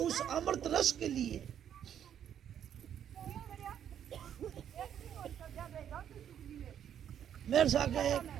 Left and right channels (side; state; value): left; quieter; 9.4 dB